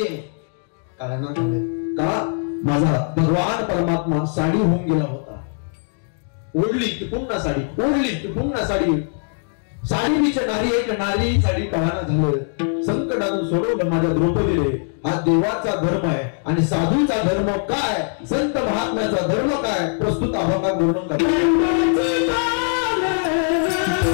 का माझा भगवान परमात्मा साडी होऊन गेला होता. ओढली की पुन्हा साडी, ओढली की पुन्हा साडी. साडी पीछे नारी है क्या नारी ही साडी कळाना झालं. संकटातून सोडवलं माझ्या द्रौपदीने. हा देवाचा धर्म आहे. आणि साधूचा धर्म काय, संत महात्म्याचा धर्म काय, प्रस्तुत अभंगात वर्णन करतो.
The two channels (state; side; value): silent; right; 64 dB below the other